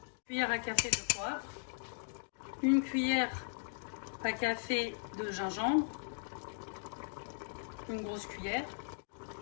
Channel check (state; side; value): silent; right; digital silence